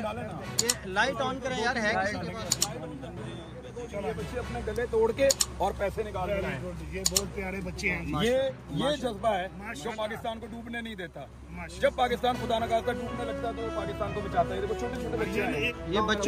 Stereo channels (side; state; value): both; identical; correlation 1.00